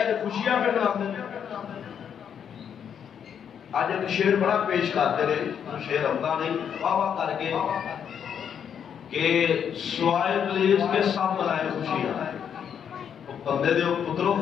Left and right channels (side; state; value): right; quieter; 8.1 dB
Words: خوشیاں پہ مناتے آج ایک شعر بڑا پیش کرتے رہے شعر ہوتا نہیں واہ واہ کر کے کہ سوائے ابلیس کے سب منائے خوشیاں بندے دے پتروں